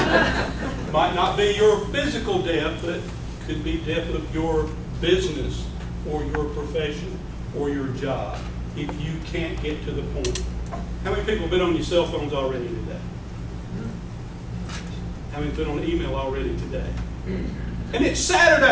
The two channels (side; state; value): both; identical; correlation 1.00